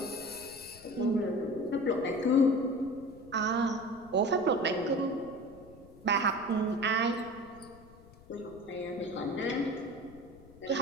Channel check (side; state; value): left; noise; rumble, 22 dB below the sound